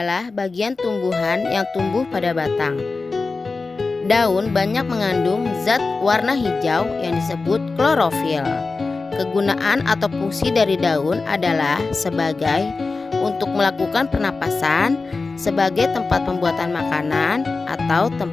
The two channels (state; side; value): quieter; right; 3.9 dB